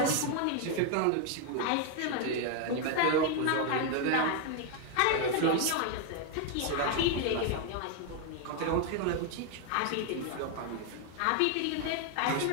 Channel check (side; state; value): both; different; correlation 0.01